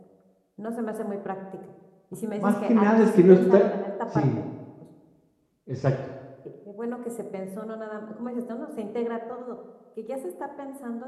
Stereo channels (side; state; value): both; identical; correlation 1.00